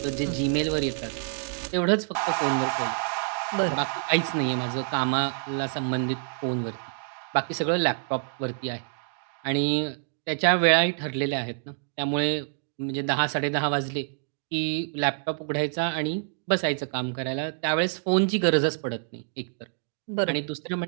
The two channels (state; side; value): silent; left; digital silence